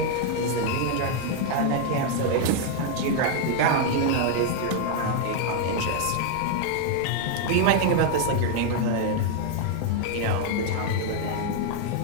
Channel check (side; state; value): both; different; correlation 0.00